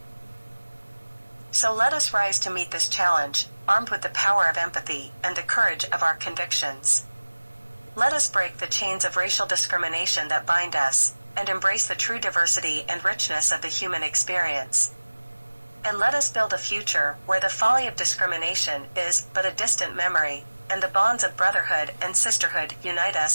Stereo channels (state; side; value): inverted; both; correlation -1.00